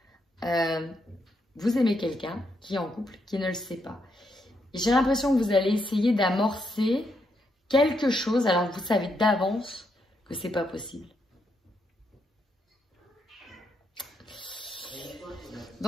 vous aimez quelqu'un qui est en couple, qui ne le sait pas. J'ai l'impression que vous allez essayer d'amorcer quelque chose alors que vous savez d'avance que c'est pas possible.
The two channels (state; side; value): normal; both; correlation 0.79